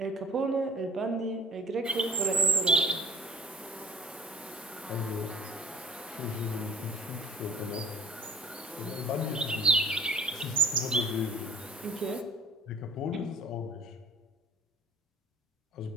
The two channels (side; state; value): both; normal; correlation 0.44